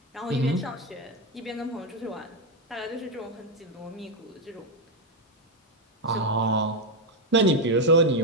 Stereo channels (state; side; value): normal; both; correlation 0.06